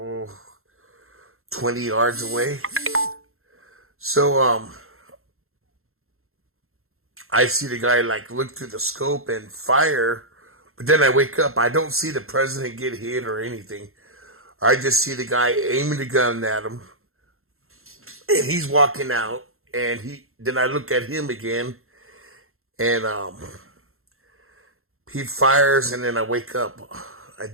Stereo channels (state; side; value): late; left; 0.62 ms